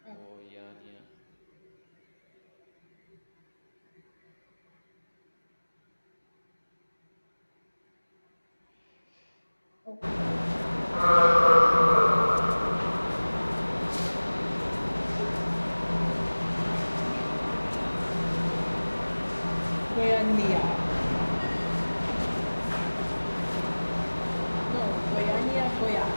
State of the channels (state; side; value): inverted; both; correlation -1.00